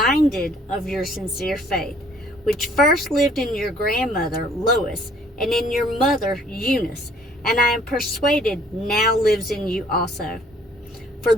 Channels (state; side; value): normal; both; correlation 0.59